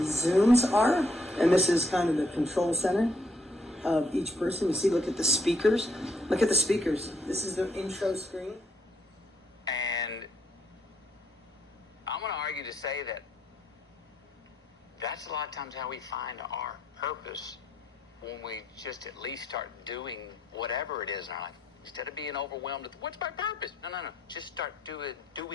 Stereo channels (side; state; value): both; normal; correlation 0.73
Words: Zooms are, and this is kind of the control center of each person. You see, look at the speakers. Look at the speakers. This is the intro screen. And I'm going to argue to say that that's a lot of times how we find our purpose, when we just at least start doing whatever it is in our life. Instead of being overwhelmed with, what's my purpose? No. Just start